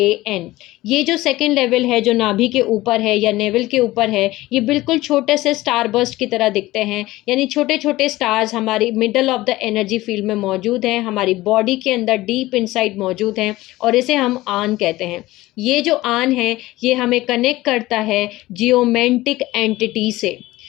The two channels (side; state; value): right; quieter; 18.0 dB